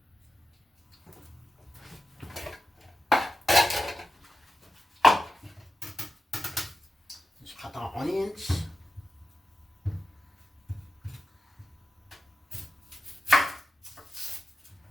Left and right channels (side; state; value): both; normal; correlation 0.90